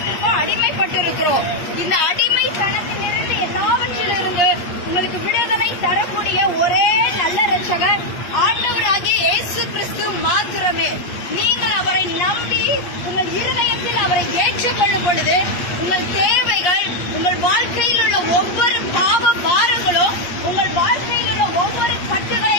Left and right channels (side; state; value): right; late; 8.4 ms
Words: அடிமைப்பட்டு இருக்கிறோம். இந்த அடிமைத்தனத்திலிருந்து எல்லாவற்றிலிருந்து உங்களுக்கு விடுதலை தரக்கூடிய ஒரே நல்ல ரட்சகர் ஆண்டவராகிய இயேசு கிறிஸ்து மாத்திரமே. நீங்கள் அவரை நம்பி உங்கள் இருதயத்தில் அவரை ஏற்றுக்கொள்ளும் பொழுது உங்கள் தேவைகள், உங்கள் வாழ்க்கையில் உள்ள ஒவ்வொரு பாவ பாரங்களும், உங்கள் வாழ்க்கையில் உள்ள ஒவ்வொரு